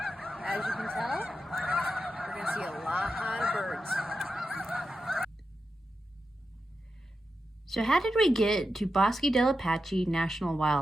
As you can tell, we're going to see a lot of birds. So how did we get to Bosque del Apache National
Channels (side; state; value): both; normal; correlation 0.89